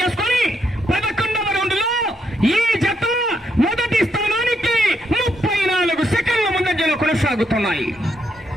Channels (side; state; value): both; normal; correlation 0.77